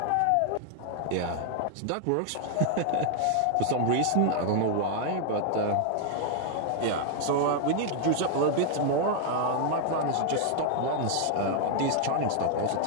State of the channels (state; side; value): different; both; correlation 0.00